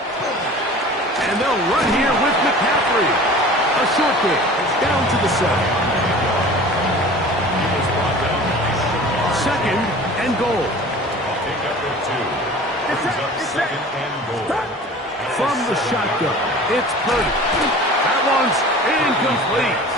they'll run here with McCaffrey. A short kick down to the 7. 2nd and goal. From the shotgun, it's Purdy. That one's incomplete.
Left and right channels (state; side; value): normal; both; correlation 0.41